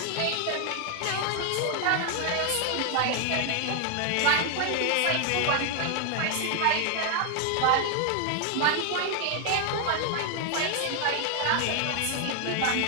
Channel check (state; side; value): different; both; correlation 0.00